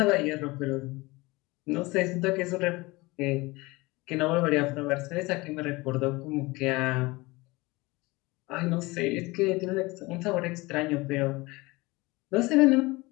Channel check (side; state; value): right; quieter; 22.7 dB